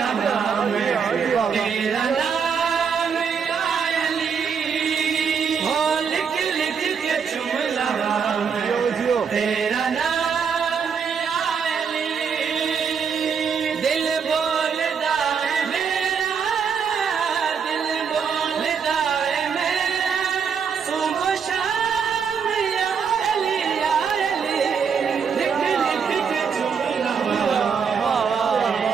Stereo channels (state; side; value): quieter; left; 6.5 dB